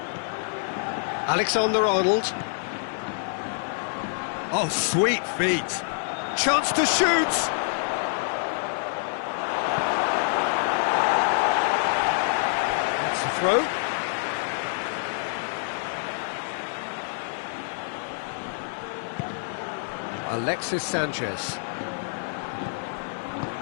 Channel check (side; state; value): right; silent; digital silence